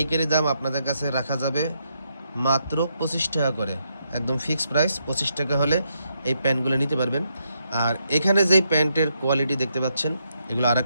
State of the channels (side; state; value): both; inverted; correlation -0.79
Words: দাম আপনাদের কাছে রাখা যাবে মাত্র 25 টাকা করে। একদম ফিক্সড প্রাইস 25 টাকা হলে এই প্যান্টগুলো নিতে পারবেন। আর এখানে যেই প্যান্টের কোয়ালিটি দেখতে পাচ্ছেন, এগুলো আর